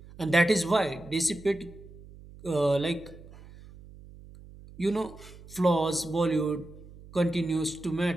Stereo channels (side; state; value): right; noise; hum, 19 dB below the sound